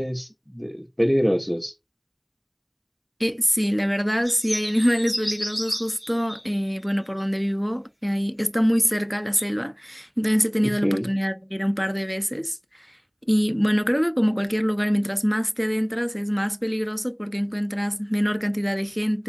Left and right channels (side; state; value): both; identical; correlation 1.00